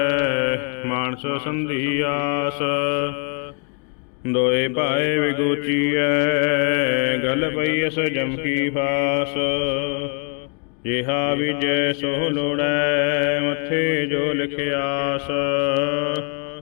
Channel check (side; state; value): right; quieter; 38.1 dB